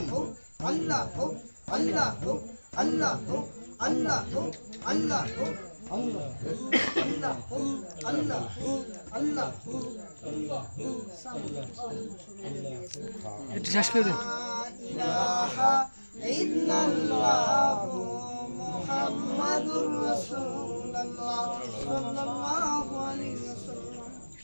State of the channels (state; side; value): inverted; both; correlation -1.00